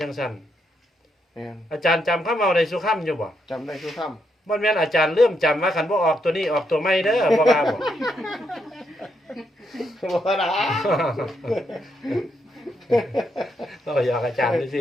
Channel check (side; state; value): both; normal; correlation 0.79